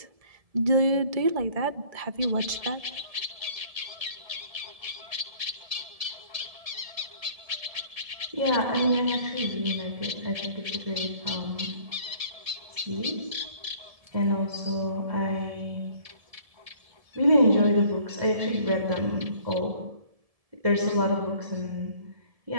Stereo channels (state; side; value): late; left; 1.7 ms